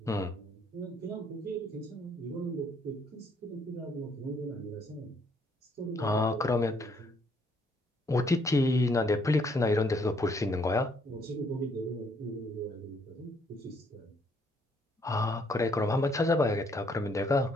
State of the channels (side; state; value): both; normal; correlation 0.68